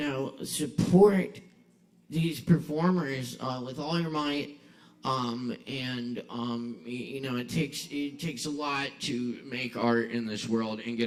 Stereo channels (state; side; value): identical; both; correlation 1.00